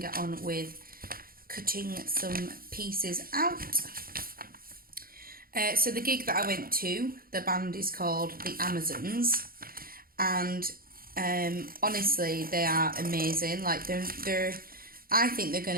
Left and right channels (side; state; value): left; late; 0.42 ms